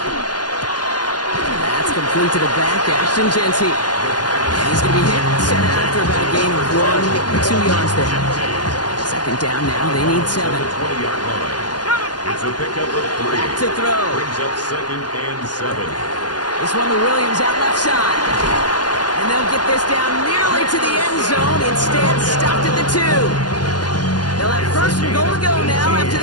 That's complete to the back, Ashton Jeanty. And he's going to be hit, set out after about a gain of 1 or 2 yards there. 2nd down now, they need 7. 20-yard line. It's a pickup of 3. To throw. Brings up 2nd and 7. This one to Williams out left side. And they'll get this down nearly to the end zone. Instead, stopped at the 2. They'll have 1st and goal to go now after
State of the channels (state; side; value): late; right; 0.70 ms